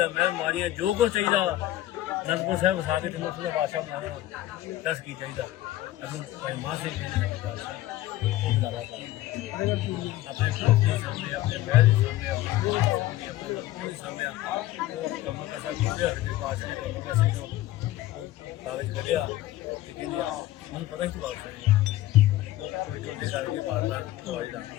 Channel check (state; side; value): quieter; right; 15.2 dB